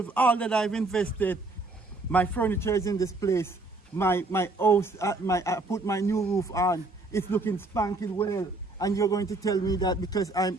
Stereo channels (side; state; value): left; quieter; 3.1 dB